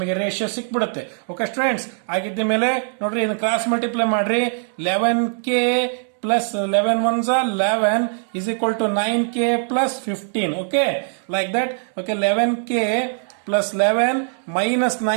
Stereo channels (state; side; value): silent; left; 65 dB below the other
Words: ರೇಷಿಯೋ ಸಿಕ್ಬಿಡುತ್ತೆ. ಓಕೆ ಸ್ಟೂಡೆಂಟ್ಸ್, ಆಗಿದ್ದ ಮೇಲೆ ನೋಡ್ರಿ, ಇದನ್ನ ಕ್ರಾಸ್ ಮಲ್ಟಿಪ್ಲೈ ಮಾಡ್ರಿ. 11k plus 11 ones are 11 is equal to 9k plus 15. Okay, like that. Okay, 11k plus 11 minus